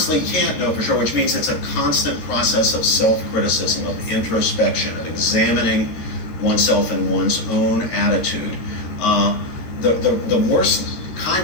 can't know for sure, which means it's a constant process of self-criticism, of introspection, of examining oneself and one's own attitude. The worst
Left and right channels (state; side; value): late; right; 13 ms